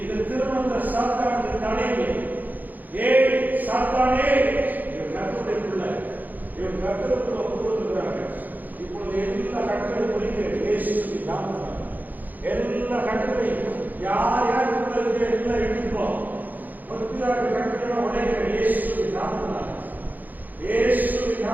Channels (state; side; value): late; left; 0.083 ms